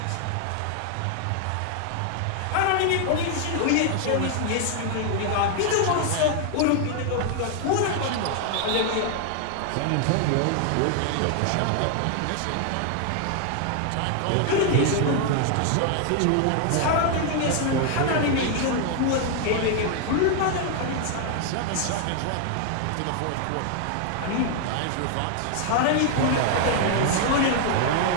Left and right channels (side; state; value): both; different; correlation 0.00